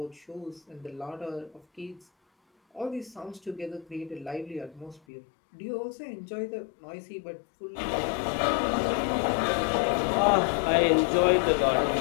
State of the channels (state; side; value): drops out; right; at 5.0 s